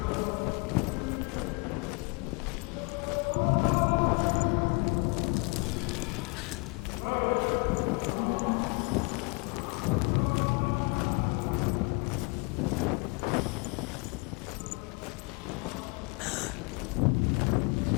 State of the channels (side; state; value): right; quieter; 30.3 dB